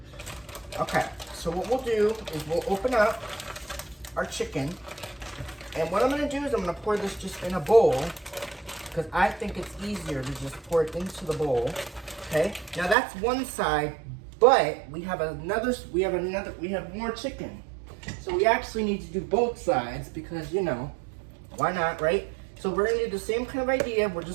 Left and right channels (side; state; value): left; drops out; at 13.0 s